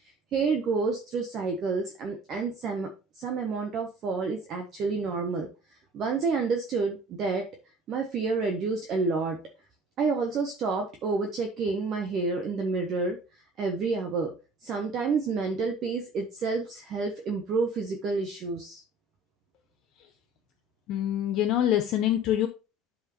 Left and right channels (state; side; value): normal; both; correlation 0.47